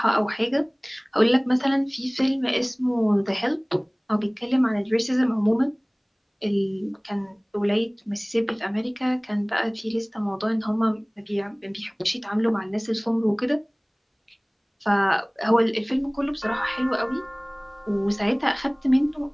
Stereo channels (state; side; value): identical; both; correlation 1.00